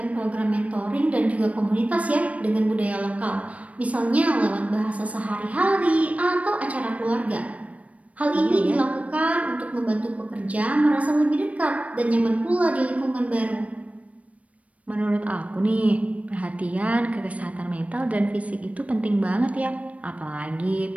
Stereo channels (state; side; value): late; left; 0.066 ms